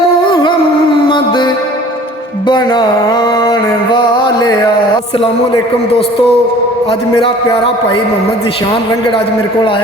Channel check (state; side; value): normal; both; correlation 0.48